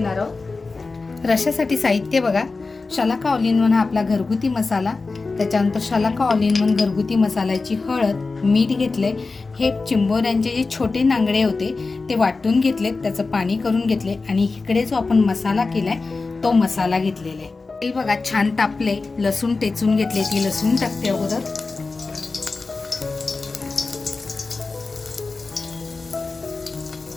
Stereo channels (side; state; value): right; quieter; 3.9 dB